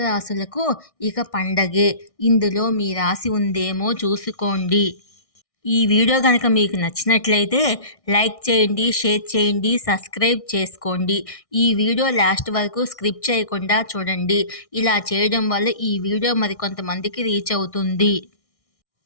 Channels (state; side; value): late; right; 1.6 ms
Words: రాశులకు ఇక పండగే. ఇందులో మీ రాశి ఉందేమో చూసుకోండి. ఈ వీడియో కనుక మీకు నచ్చినట్లయితే లైక్ చేయండి, షేర్ చేయండి, సబ్స్క్రైబ్ చేసుకోండి. ఈ వీడియో లాస్ట్ వరకు స్కిప్ చేయకుండా చూడండి. ఇలా చేయడం వల్ల ఈ వీడియో మరికొంతమందికి రీచ్ అవుతుంది.